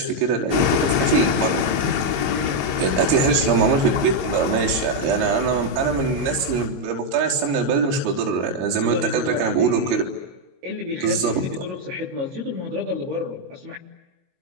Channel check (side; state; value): left; late; 22 ms